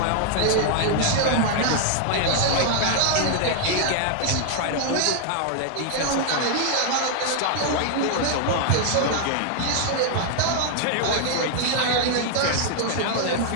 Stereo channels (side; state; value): both; different; correlation 0.00